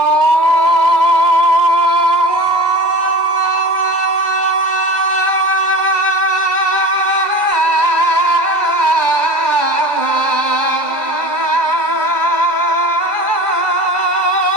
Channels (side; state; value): left; late; 2.0 ms